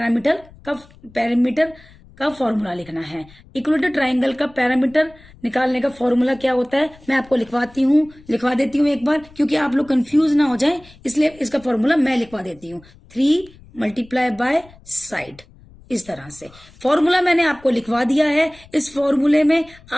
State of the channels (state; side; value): noise; left; rumble, 25 dB below the sound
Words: का फॉर्मूला लिखना है। इक्विलेटरल ट्राइंगल का पैरामीटर निकालने का फॉर्मूला क्या होता है, मैं आपको लिखवा देती हूँ एक बार, क्योंकि आप लोग कंफ्यूज ना हो जाए, इसलिए इसका फॉर्मूला मैं लिखवा देती हूँ। 3 मल्टीप्लाई बाय साइड, इस तरह से फॉर्मूला मैंने आपको लिखवा दिया है। इस फॉर्मूले में